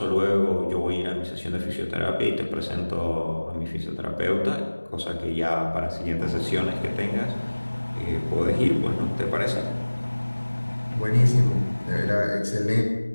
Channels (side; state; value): both; inverted; correlation -1.00